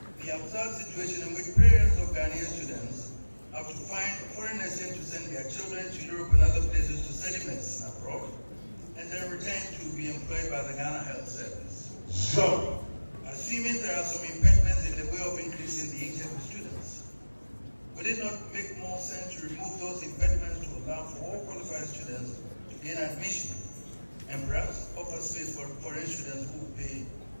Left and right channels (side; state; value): both; inverted; correlation -1.00